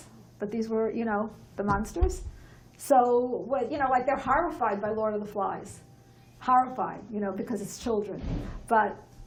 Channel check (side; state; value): both; identical; correlation 1.00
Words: But these were, the monsters. So, like they're horrified by Lord of the Flies. Horrified, because it's children. But